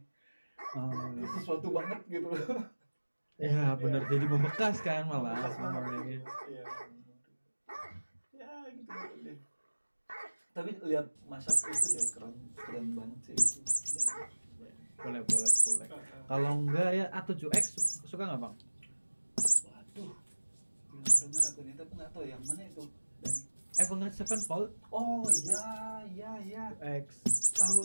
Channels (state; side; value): inverted; both; correlation -1.00